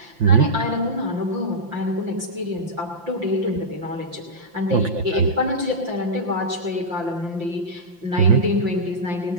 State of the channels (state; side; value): late; left; 5.8 ms